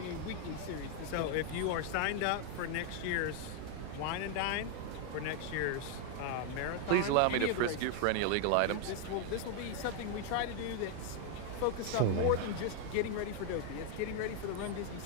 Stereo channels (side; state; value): both; different; correlation 0.00